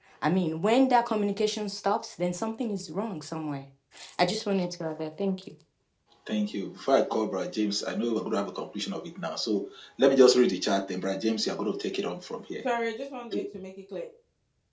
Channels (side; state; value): both; identical; correlation 1.00